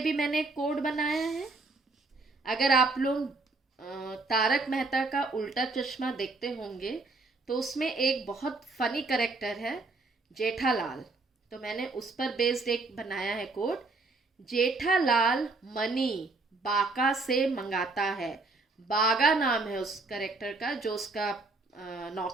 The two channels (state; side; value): quieter; left; 3.5 dB